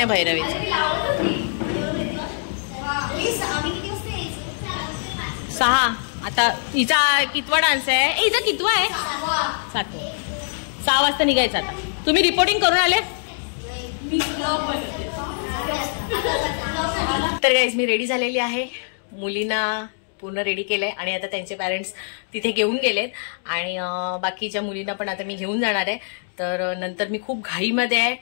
भैरवीचं. 6 आता हिचा कितवा डान्स आहे? हिचा कितवा आहे? 7. 6 वाजता निघायचं. आता तुम्ही रिपोर्टिंग करून आले? तर गाईज मी रेडी झालेली आहे. मुलींना पूर्ण रेडी केलंय आणि आता त्यांचे पॅरेंट्स तिथे घेऊन गेलेत आणि बाकीच्या मुलींना पण आता मी घेऊन जाणार आहे. तर नंतर मी खूप घाईमध्ये आहे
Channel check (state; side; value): silent; right; digital silence